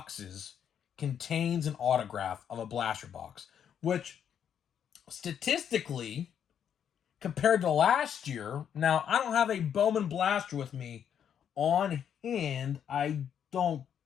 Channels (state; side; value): quieter; right; 8.7 dB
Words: contains an autograph of a blaster box, which statistically, compared to last year, now I don't have a Bowman Blaster with me on hand, I don't